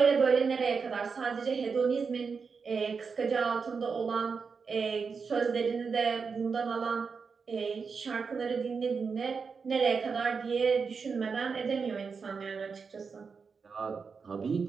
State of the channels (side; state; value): left; quieter; 5.4 dB